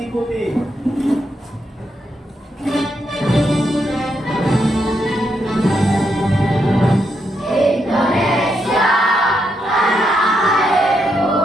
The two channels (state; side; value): normal; both; correlation 0.80